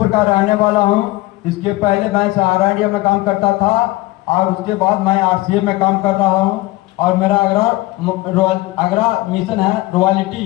का रहने वाला हूँ। इसके पहले मैं सहारा इंडिया में काम करता था और उसके बाद मैं आरसीएम में काम कर रहा हूँ और मेरा आगरा मिशन है रॉयल्टी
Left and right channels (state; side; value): quieter; right; 19.4 dB